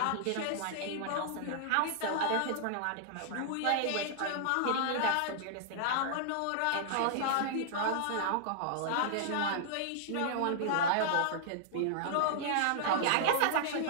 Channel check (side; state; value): both; different; correlation -0.01